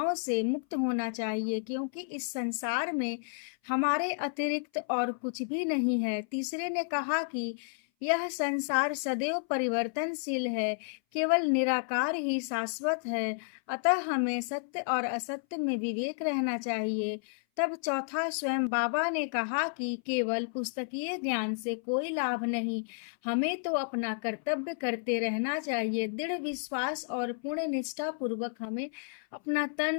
से मुक्त होना चाहिए, क्योंकि इस संसार में हमारे अतिरिक्त और कुछ भी नहीं है। तीसरे ने कहा कि यह संसार सदैव परिवर्तनशील है, केवल निराकार ही शाश्वत है, अतः हमें सत्य और असत्य में विवेक रहना चाहिए। तब चौथा स्वयं बाबा ने कहा कि केवल पुस्तकीय ज्ञान से कोई लाभ नहीं, हमें तो अपना कर्तव्य करते रहना चाहिए। दृढ़ विश्वास और पूर्ण निष्ठा पूर्वक हमें अपना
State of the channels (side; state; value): right; silent; 57 dB below the other